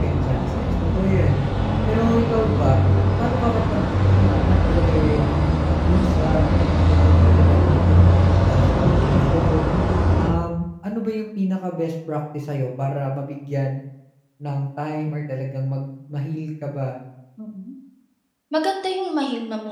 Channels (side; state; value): both; identical; correlation 1.00